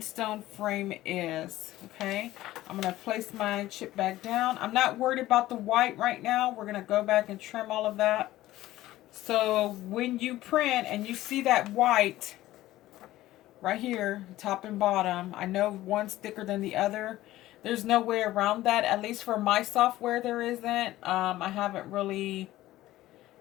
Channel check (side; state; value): right; quieter; 15.7 dB